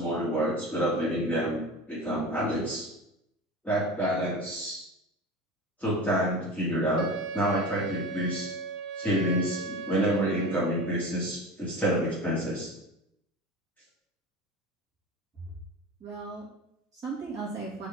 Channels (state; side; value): normal; both; correlation 0.31